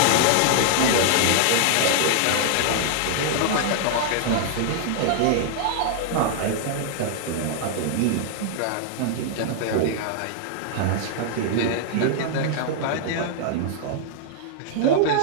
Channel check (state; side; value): different; both; correlation -0.01